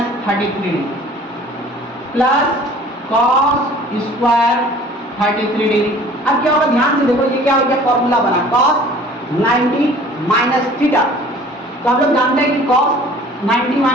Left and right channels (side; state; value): both; normal; correlation 0.49